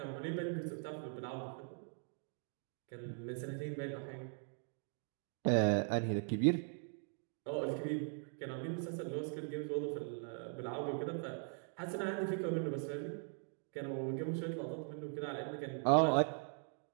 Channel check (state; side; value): silent; left; 51 dB below the other